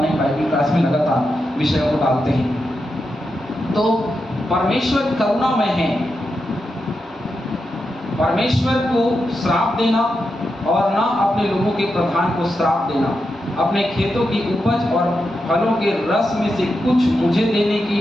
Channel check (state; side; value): normal; both; correlation 0.87